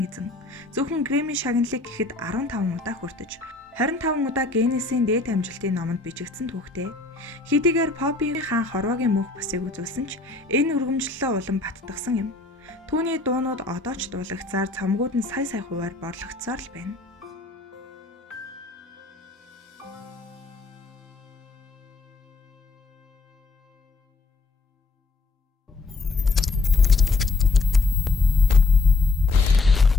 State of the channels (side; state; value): right; quieter; 3.5 dB